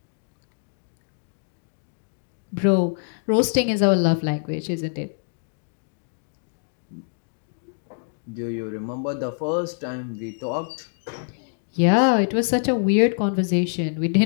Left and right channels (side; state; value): right; silent; digital silence